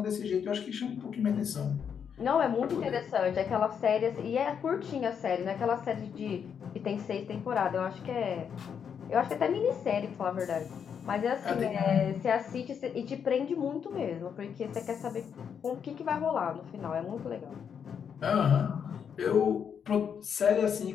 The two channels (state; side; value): quieter; right; 7.5 dB